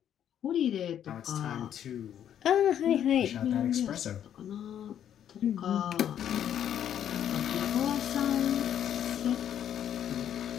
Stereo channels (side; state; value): right; quieter; 9.9 dB